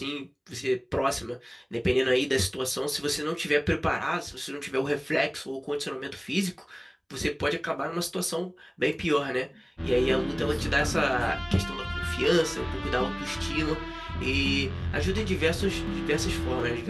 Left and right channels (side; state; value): both; identical; correlation 1.00